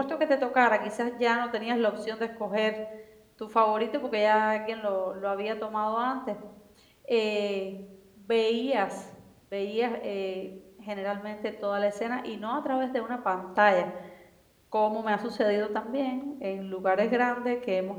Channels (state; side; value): identical; both; correlation 1.00